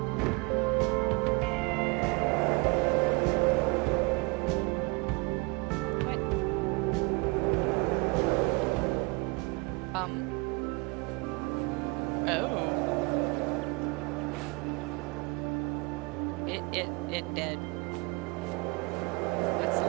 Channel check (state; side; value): quieter; left; 28.1 dB